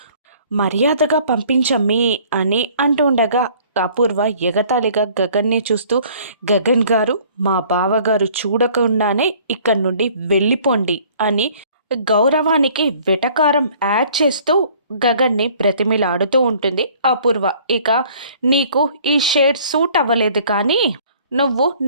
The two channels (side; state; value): both; inverted; correlation -0.55